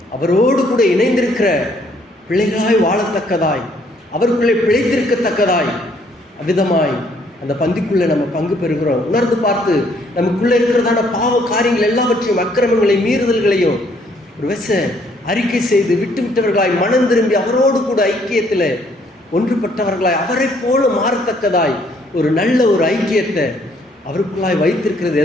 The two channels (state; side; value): normal; both; correlation 0.66